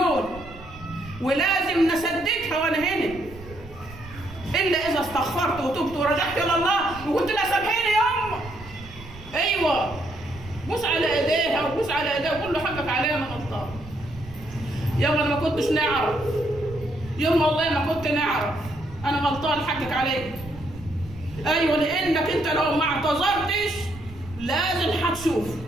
ولازم نسددها وانا هنا، الا اذا استغفرت وتبت ورجعت الى الله وقلت لها سامحيني يما. ايوه، بوس على ايديها وبوس على ايديها وقول له حقك عليا انا غلطان. يما انا ما كنتش نعرف، يما والله ما كنت نعرف، انا غلطان حقك عليك. ايوه، لانك انت لو ما اعتذرتش لازم هتشوف،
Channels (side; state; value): right; noise; rumble, 17 dB below the sound